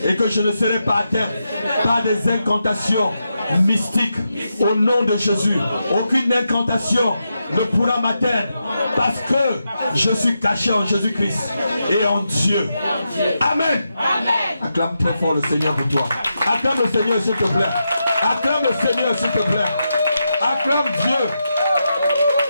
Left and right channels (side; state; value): both; inverted; correlation -0.86